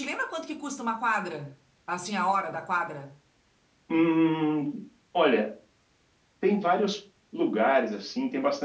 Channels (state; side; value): identical; both; correlation 1.00